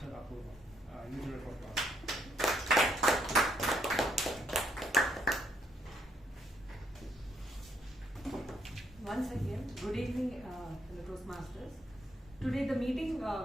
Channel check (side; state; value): both; normal; correlation 0.72